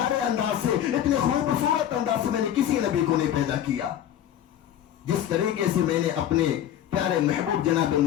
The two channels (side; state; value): right; quieter; 10.8 dB